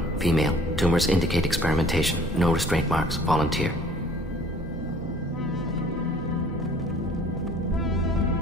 female. Tumors indicate experimentation. No restraint marks. Volunteer.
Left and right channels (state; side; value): normal; both; correlation 0.53